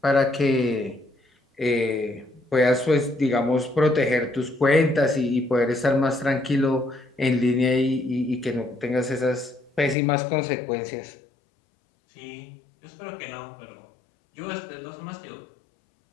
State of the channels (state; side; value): drops out; right; at 10.0 s